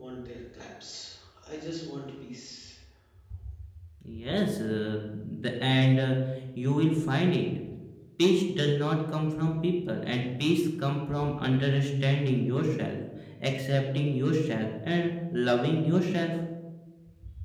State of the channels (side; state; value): both; identical; correlation 1.00